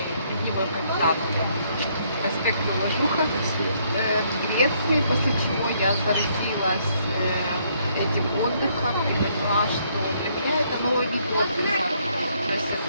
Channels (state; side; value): inverted; both; correlation -0.69